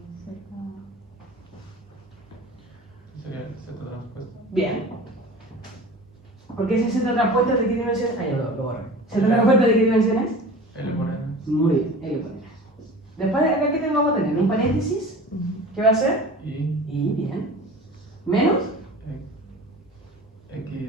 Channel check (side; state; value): both; normal; correlation 0.38